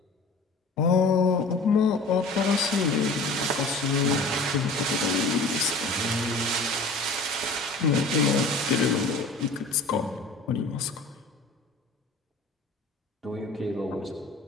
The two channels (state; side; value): quieter; right; 3.1 dB